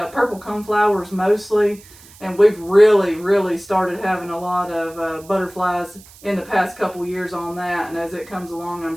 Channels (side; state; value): right; noise; hiss, 23 dB below the sound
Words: Purple coneflowers mostly, and we've really started having a lot of butterflies in the past couple years on that, and as it comes along, I'm